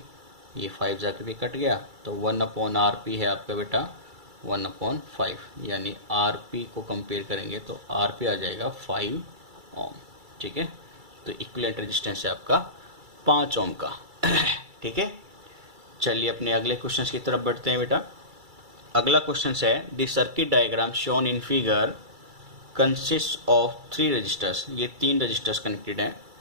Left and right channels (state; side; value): late; left; 2.3 ms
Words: ये 5 जाके भी कट गया, तो 1/RP है आपका बेटा 1/5, यानी RP को कंपेयर करेंगे तो RP आ जाएगा 5 ओम। ठीक है, तो इक्विवेलेंट रेजिस्टेंस है आपका 5 ओम का। ठीक है, चलिए अपने अगले क्वेश्चन की तरफ बढ़ते हैं बेटा। अगला क्वेश्चन है the circuit diagram shown in figure consist of 3 resistors. ये 3 रजिस्टर्स कनेक्टेड हैं।